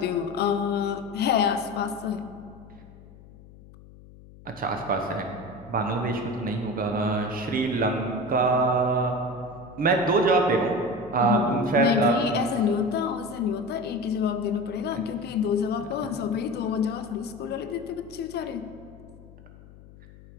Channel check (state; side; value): noise; left; hum, 21 dB below the sound